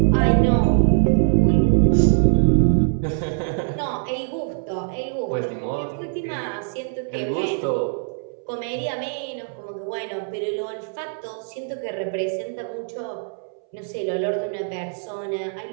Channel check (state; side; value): silent; left; 64 dB below the other